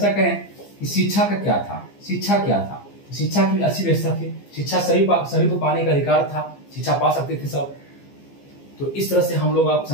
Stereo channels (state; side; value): late; right; 15 ms